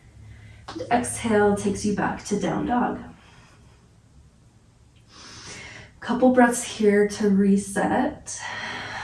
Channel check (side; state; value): both; identical; correlation 1.00